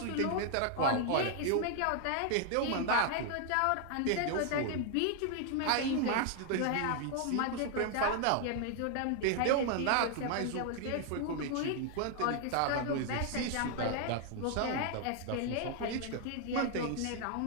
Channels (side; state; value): both; different; correlation 0.00